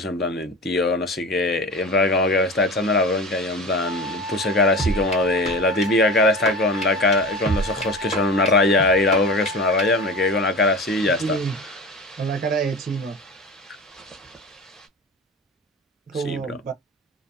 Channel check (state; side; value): normal; both; correlation 0.33